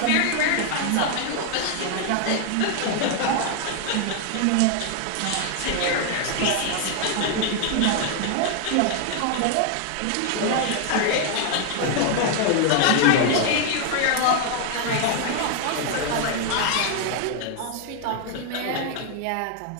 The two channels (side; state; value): both; different; correlation 0.00